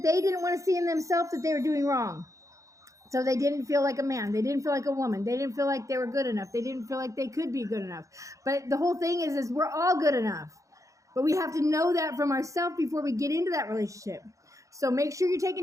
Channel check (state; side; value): late; left; 0.15 ms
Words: they didn't want to see in themselves that they were doing wrong. So they didn't feel like a man. They didn't feel like a woman. They didn't feel like they were good enough. They didn't feel like they could be good enough. But the whole thing is we're all good enough. But we have to know that from ourselves before we get into that relationship. So make sure you're